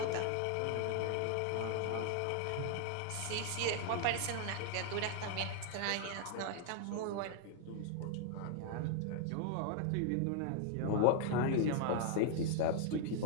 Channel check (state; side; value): different; both; correlation 0.00